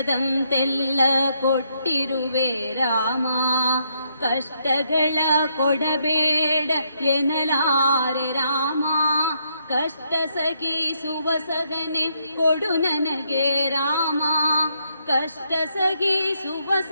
ಕೊಟ್ಟಿರುವೆ ರಾಮ. ಕಷ್ಟಗಳ ಕೊಡಬೇಡ ಎನ್ನಲಾರೆ ರಾಮ, ಕಷ್ಟ ಸಗಿಸುವ ಸಗನೆ ಕೊಡು ನನಗೆ ರಾಮ. ಕಷ್ಟ ಸಗಿಸುವ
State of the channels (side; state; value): both; inverted; correlation -0.75